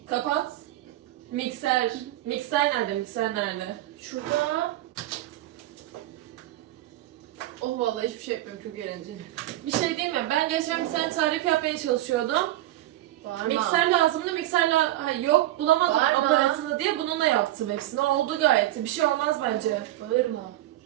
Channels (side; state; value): left; quieter; 15.2 dB